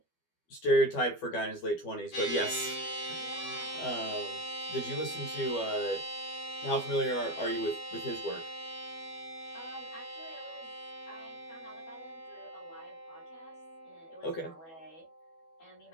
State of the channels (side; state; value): right; late; 12 ms